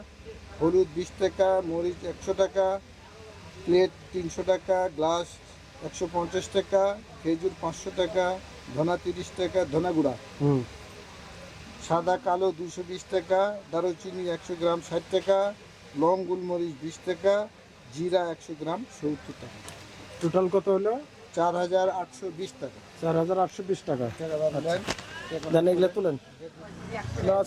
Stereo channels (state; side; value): identical; both; correlation 1.00